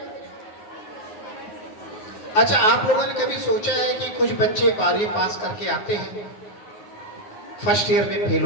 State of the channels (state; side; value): late; right; 9.5 ms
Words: अच्छा, आप लोगों ने कभी सोचा है कि कुछ बच्चे 12वीं पास करके आते हैं, फर्स्ट ईयर में फेल